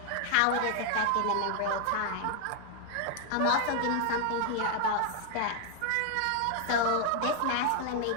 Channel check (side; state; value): both; different; correlation 0.00